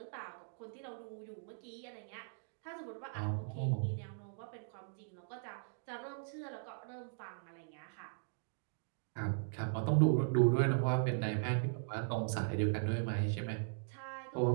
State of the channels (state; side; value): silent; left; digital silence